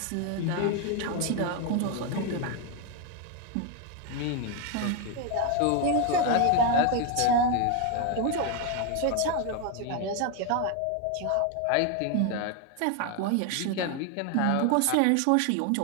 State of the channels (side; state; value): both; different; correlation 0.01